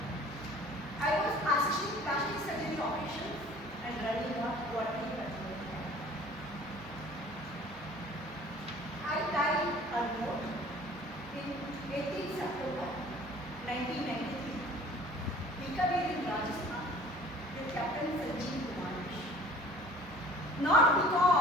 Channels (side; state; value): both; normal; correlation 0.49